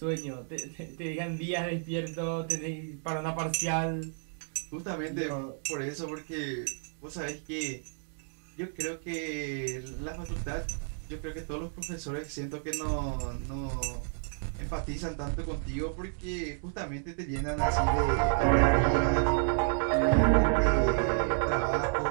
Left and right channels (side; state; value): left; silent; 57 dB below the other